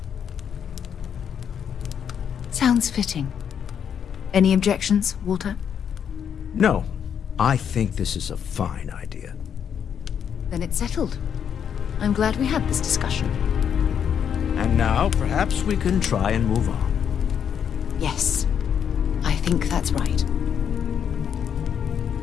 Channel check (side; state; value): right; quieter; 8.1 dB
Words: Sounds fitting. Any objections, Walter? No, I think this is a fine idea. Then it's settled. I'm glad we had this discussion. And now, perhaps we can try and move on. Yes, I think that's right.